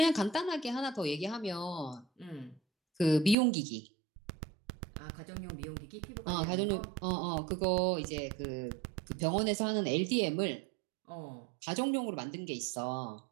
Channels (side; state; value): left; drops out; at 3.4 s